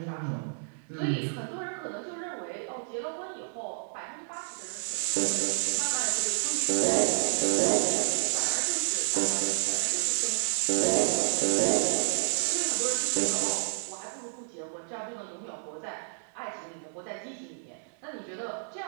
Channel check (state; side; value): silent; left; 58 dB below the other